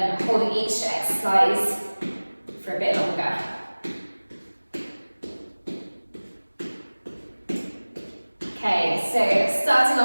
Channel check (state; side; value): inverted; both; correlation -1.00